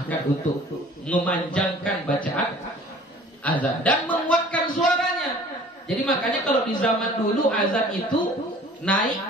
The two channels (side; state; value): both; normal; correlation 0.49